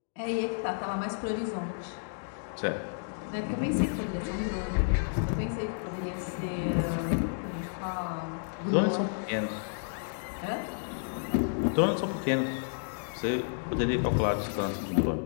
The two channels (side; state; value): right; silent; digital silence